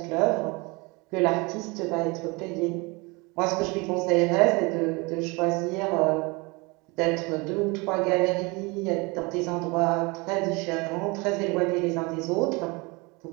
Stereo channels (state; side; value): quieter; left; 26.6 dB